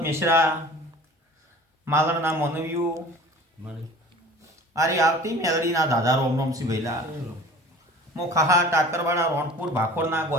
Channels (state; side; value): normal; both; correlation 0.43